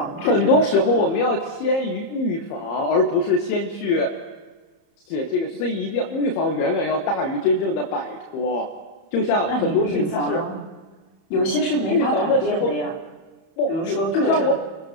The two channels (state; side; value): late; right; 30 ms